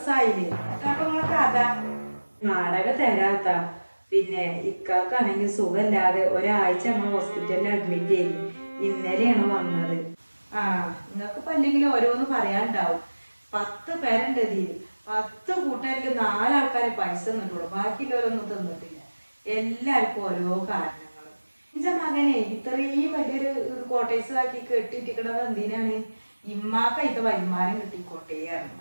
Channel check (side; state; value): both; inverted; correlation -1.00